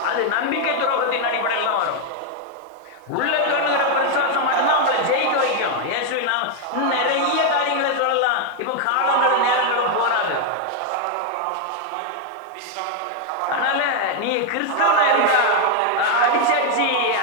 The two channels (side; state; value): both; different; correlation 0.01